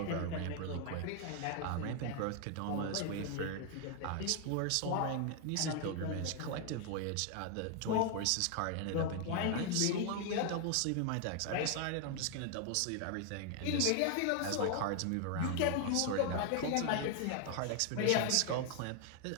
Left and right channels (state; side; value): different; both; correlation 0.00